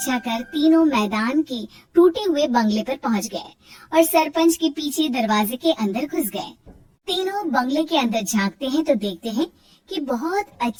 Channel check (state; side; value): identical; both; correlation 1.00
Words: कर तीनों मैदान के टूटे हुए बंगले पर पहुंच गए और सरपंच के पीछे दरवाजे के अंदर घुस गए। तीनों बंगले के अंदर झांकते हैं तो देखते हैं कि बहुत